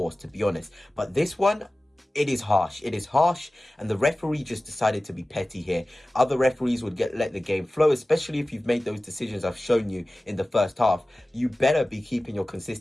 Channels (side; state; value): both; normal; correlation 0.97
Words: to be honest. But this one, it is harsh. It is harsh, and the referee just decided to be petty here. Other referees would let the game flow, especially if you've made those decisions I've shown you in the first half. You better be keeping your